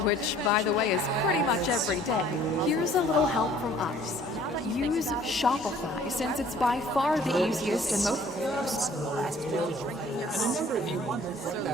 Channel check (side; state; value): both; normal; correlation 0.55